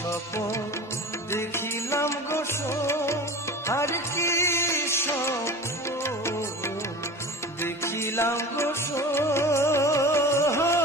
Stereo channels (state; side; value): normal; both; correlation 0.35